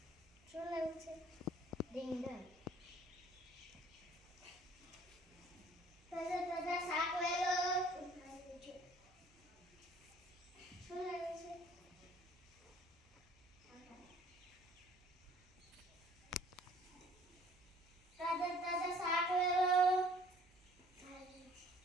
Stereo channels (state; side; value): noise; right; hum, 29 dB below the sound